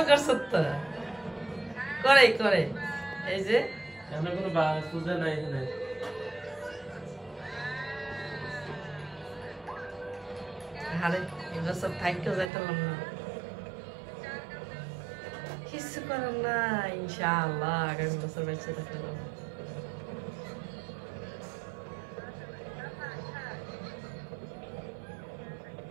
করছ তো করে এই যে আমরা কোনো পূজা নাই এখানে আরে এগুলো সব থাইকেও যাইতাম না কিছু করার না ইনশাআল্লাহ আগামী বছর বেঁচে থাকলাম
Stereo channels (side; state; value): left; drops out; at 12.5 s